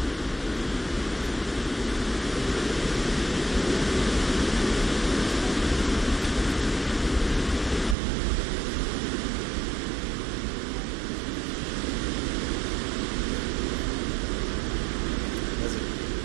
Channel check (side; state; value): left; drops out; at 8.0 s